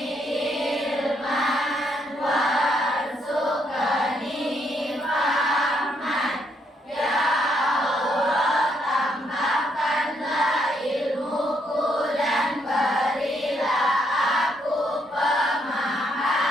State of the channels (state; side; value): normal; both; correlation 0.74